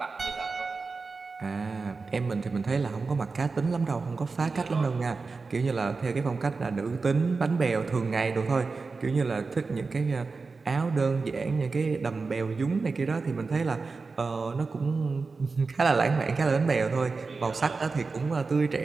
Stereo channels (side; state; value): left; quieter; 4.3 dB